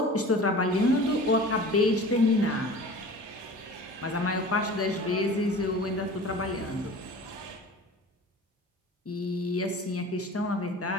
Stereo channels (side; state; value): both; normal; correlation 0.40